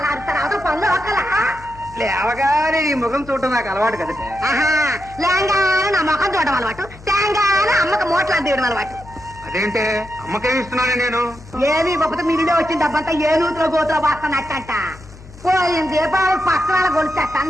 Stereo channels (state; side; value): noise; left; hum, 19 dB below the sound